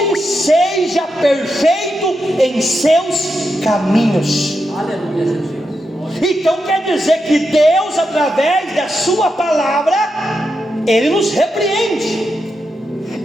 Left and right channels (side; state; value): both; normal; correlation 0.86